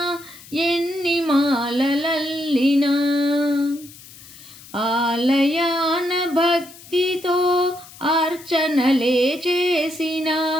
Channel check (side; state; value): left; noise; hiss, 20 dB below the sound